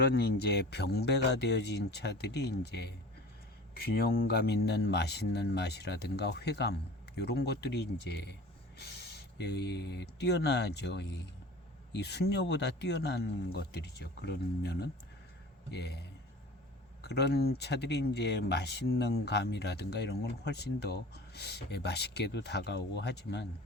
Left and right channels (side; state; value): both; normal; correlation 0.40